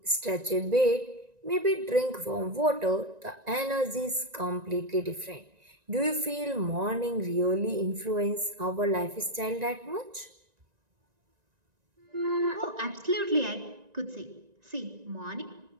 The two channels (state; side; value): late; left; 1.9 ms